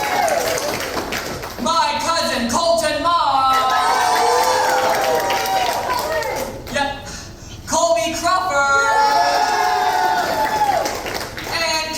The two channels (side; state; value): both; identical; correlation 1.00